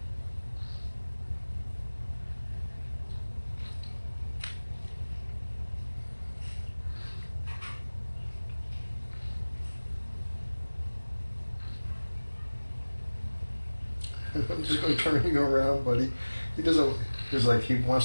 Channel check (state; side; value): inverted; both; correlation -1.00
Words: I'm just going to turn you around, buddy. He doesn't. He's like he